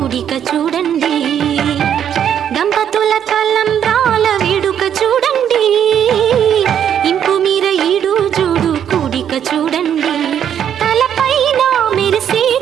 చూడండి దంపతుల తలంబ్రాల విడుక చూడండి ఇంపు మీర ఈడు జోడు కూడిక చూడండి తలపైన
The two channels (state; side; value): quieter; left; 9.2 dB